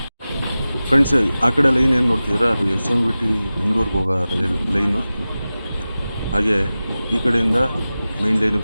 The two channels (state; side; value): inverted; both; correlation -0.96